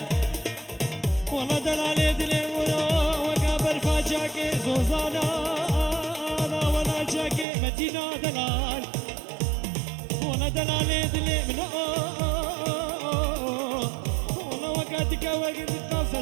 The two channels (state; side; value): drops out; left; at 7.5 s